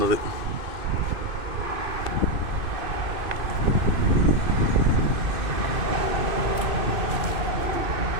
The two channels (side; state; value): left; late; 2.5 ms